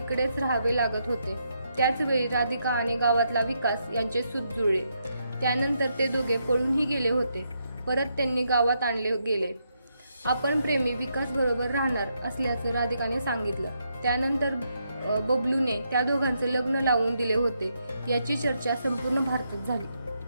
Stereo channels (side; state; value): both; inverted; correlation -0.79